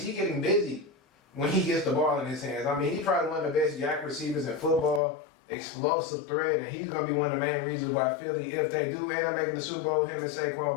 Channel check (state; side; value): drops out; right; at 5.0 s